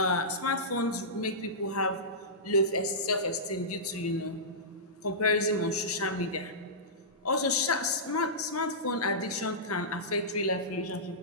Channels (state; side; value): normal; both; correlation -0.17